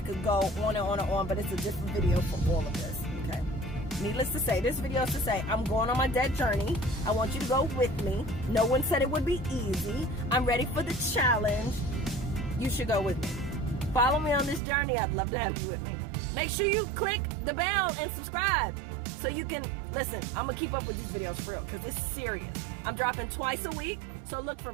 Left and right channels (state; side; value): drops out; left; at 14.6 s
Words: could go on and on and on, but it's a different video for all of this, okay? Needless to say, this video is to say, I'm going on my debt journey. I want you to go with me. No one said it would be easy. I'm ready for the challenge. You should go with me. Follow me on this journey. I'd love to have you with me. Make sure you click the bell and subscribe so you can, listen, I'm going to keep up with these videos for real because it's serious. I'm dropping twice a week, so look for